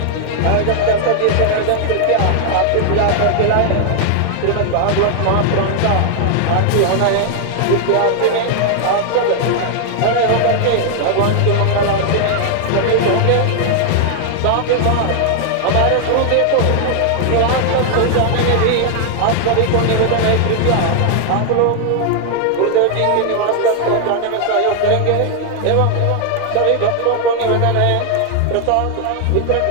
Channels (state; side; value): different; both; correlation 0.00